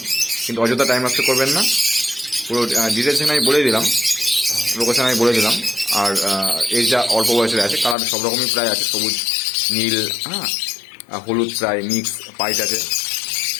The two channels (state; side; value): drops out; right; at 8.0 s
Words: কিন্তু অযথা টাইম নষ্ট করবেন না। পুরো ডিটেলস আমি বলে দিলাম, লোকেশন আমি বলে দিলাম। আর এই যা অল্প বয়সের আছে, কালার সব রকমই প্রায় আছে, সবুজ, নীল, হ্যাঁ, হলুদ প্রায় মিক্স, পাইট আছে।